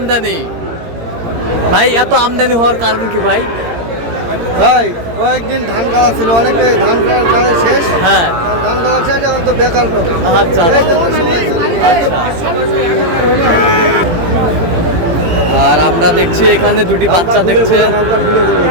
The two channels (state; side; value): late; left; 17 ms